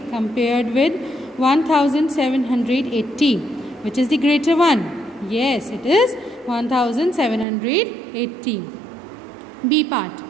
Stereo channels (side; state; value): left; drops out; at 7.5 s